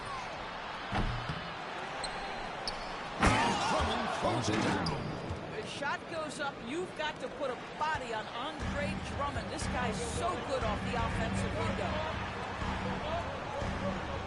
Drummond closes it down. The shot goes up. You've got to put a body on Andre Drummond. This guy's so good off the offensive window.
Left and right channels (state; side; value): identical; both; correlation 1.00